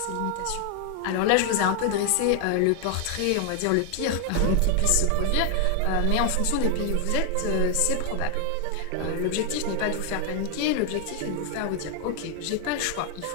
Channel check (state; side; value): different; both; correlation 0.00